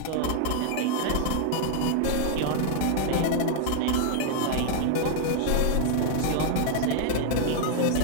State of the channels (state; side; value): different; both; correlation 0.00